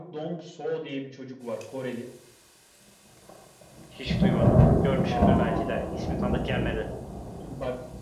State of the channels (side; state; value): both; identical; correlation 1.00